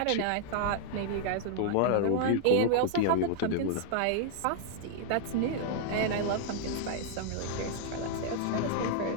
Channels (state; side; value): different; both; correlation 0.00